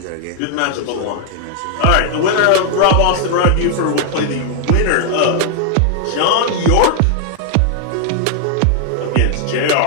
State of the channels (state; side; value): different; both; correlation 0.00